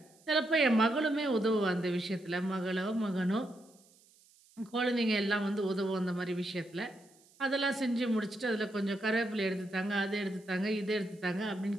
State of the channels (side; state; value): right; noise; hiss, 29 dB below the sound